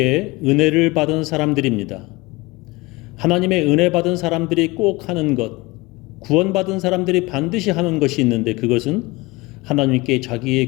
은혜를 받은 사람들입니다. 하나님의 은혜 받은 사람들이 꼭 하는 것, 구원받은 사람들이 반드시 하는 것이 있는데 그것은 하나님께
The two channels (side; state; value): right; quieter; 22.6 dB